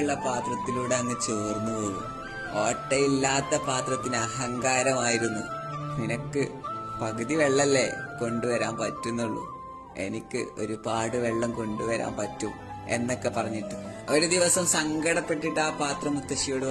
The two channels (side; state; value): both; identical; correlation 1.00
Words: പാത്രത്തിലൂടെ അങ്ങ് ചോർന്നു പോകും. ഓട്ടയില്ലാത്ത പാത്രത്തിന് അഹങ്കാരമായിരുന്നു. നിനക്ക് പകുതി വെള്ളല്ലേ കൊണ്ടുവരാൻ പറ്റുന്നുള്ളൂ, എനിക്ക് ഒരുപാട് വെള്ളം കൊണ്ടുവരാൻ പറ്റും എന്നൊക്കെ പറഞ്ഞിട്ട് ഒരു ദിവസം സങ്കടപ്പെട്ടിട്ട് ആ പാത്രം മുത്തശ്ശിയോട്